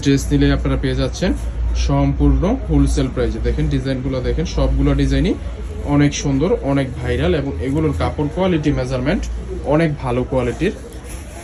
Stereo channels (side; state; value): both; identical; correlation 1.00